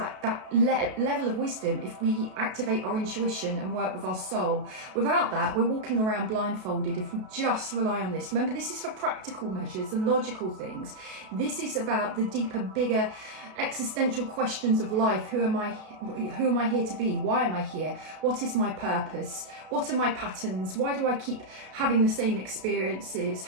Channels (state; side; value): late; left; 33 ms